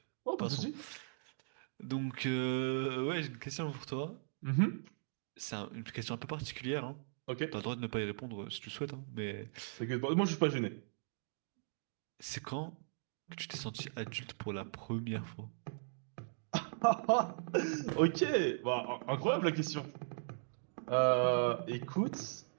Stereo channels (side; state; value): left; silent; digital silence